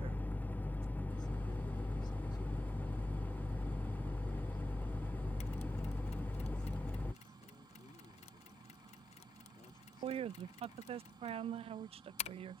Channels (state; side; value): normal; both; correlation 0.89